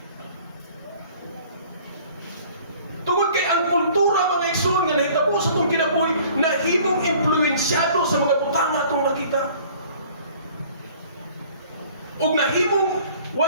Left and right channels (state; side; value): inverted; both; correlation -0.52